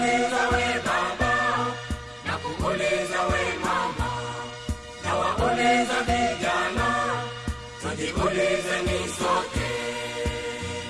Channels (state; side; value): identical; both; correlation 1.00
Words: we baba, nakuuliza we mama, nawauliza vijana, tujiulizeni sote.